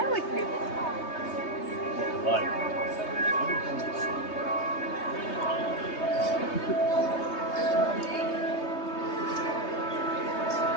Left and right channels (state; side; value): late; right; 3.2 ms